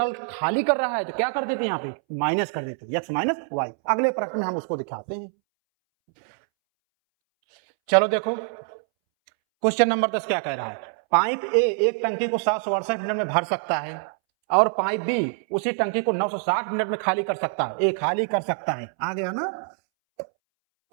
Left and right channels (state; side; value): silent; left; 62 dB below the other